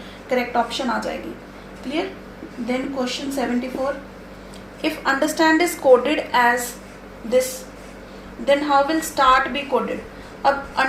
करेक्ट ऑप्शन आ जाएगी। Clear. Then question 74, if understand is coded as this then how will start be coded. अब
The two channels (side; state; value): both; identical; correlation 1.00